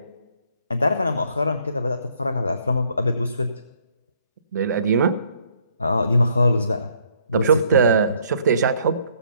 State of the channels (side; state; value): both; inverted; correlation -0.66